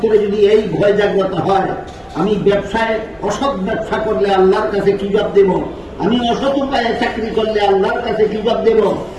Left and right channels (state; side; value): identical; both; correlation 1.00